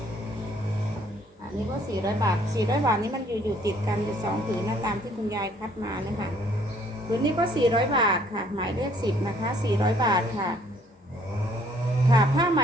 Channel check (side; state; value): both; normal; correlation 0.62